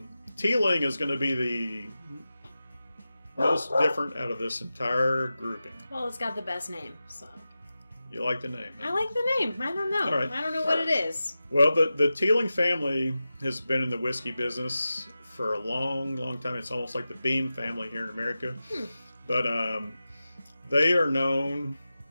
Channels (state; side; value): inverted; both; correlation -0.94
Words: Teeling is going to be the most different out of this entire grouping. Well, it's got the best name, so. You like the name? I like the name. I don't know. All right. I don't know what it is. Well, the Teeling family has been in the whiskey business for a long, long time. It's almost like the Beam family here in America. But they are known,